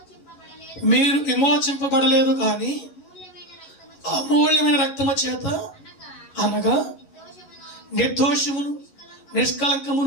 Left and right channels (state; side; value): late; right; 11 ms